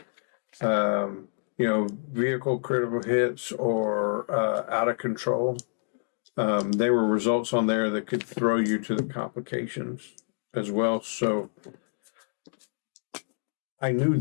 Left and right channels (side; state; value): right; silent; digital silence